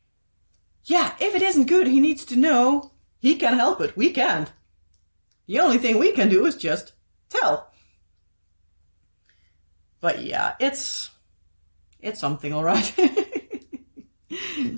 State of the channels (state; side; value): inverted; both; correlation -1.00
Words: yeah, if it isn't good, he needs to know. He can help it. We can't. The only thing we can do is just tell. But yeah, it's something, all right.